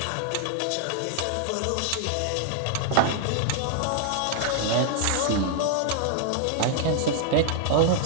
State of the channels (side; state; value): both; different; correlation -0.01